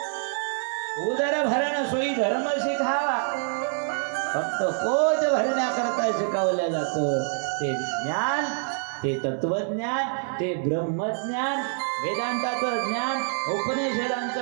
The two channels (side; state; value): left; silent; 61 dB below the other